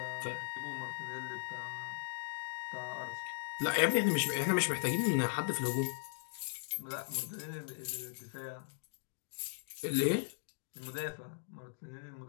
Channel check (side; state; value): right; silent; digital silence